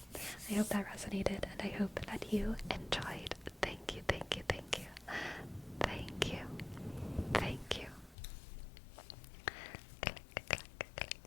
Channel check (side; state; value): right; drops out; at 8.2 s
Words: I hope that resonated, and I hope that you enjoyed. Thank you, thank you, thank you. Thank you. Thank you.